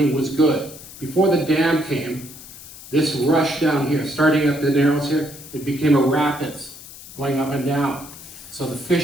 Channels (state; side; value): noise; left; hiss, 16 dB below the sound